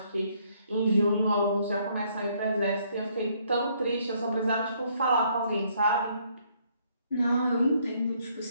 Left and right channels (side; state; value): both; inverted; correlation -0.67